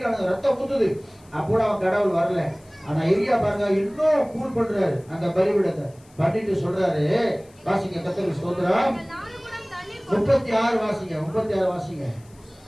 ரத்தம் ஊத்துது. அப்போ அவன் கடவுள் வரல. ஆனா எரியா பாருங்க, இன்னும் கூல் பண்றாரு அந்த பலிபீடத்தை. பண்ணிட்டு சொல்றாரு, வாசிங்க கர்த்தருக்கு ஸ்தோத்திரம். 36 வாசிங்க, 36 வாசிங்க.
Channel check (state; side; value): noise; left; hiss, 29 dB below the sound